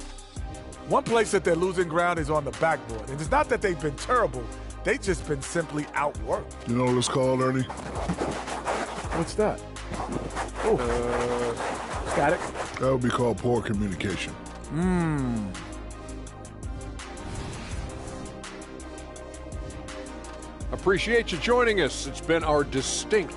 One place that they're losing ground is on the backboard. And it's not that they've been terrible. They've just been simply outworked. You know what it's called, Ernie? What's that? Oh, static. That would be called poor communication. Appreciate you joining us. It's been our distinct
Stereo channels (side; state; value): both; identical; correlation 1.00